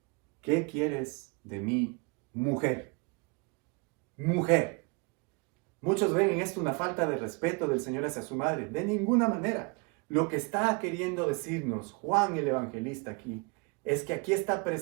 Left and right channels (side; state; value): left; quieter; 32.0 dB